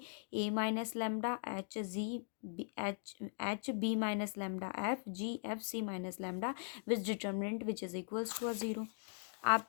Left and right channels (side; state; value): right; silent; digital silence